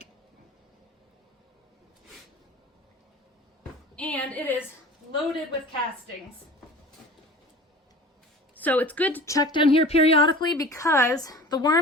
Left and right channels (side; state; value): both; normal; correlation 0.40